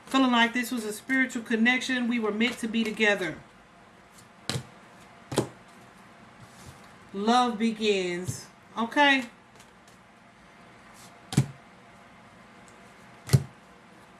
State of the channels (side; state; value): both; identical; correlation 1.00